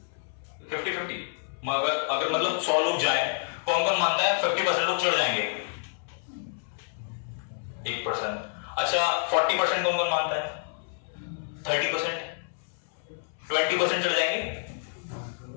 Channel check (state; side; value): silent; right; 58 dB below the other